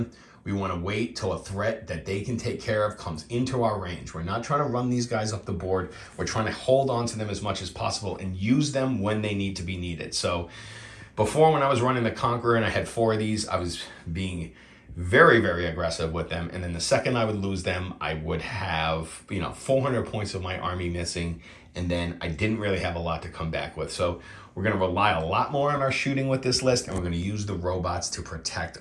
We want to wait till a threat that they can take care of comes into our range. We're not trying to run these guys up the board. We're trying to hold on to them as much as possible and use them when they need to be needed. So before, when I was running the Conqueror and I had 4 of these, I was being very, very aggressive with them. And then the second I would lose them, I would have, 400 points of my army missing. And then I didn't really have a lot to come back with. So we're going to rely a lot more on our shooting with this list, and we're going to use the robots to protect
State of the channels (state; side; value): identical; both; correlation 1.00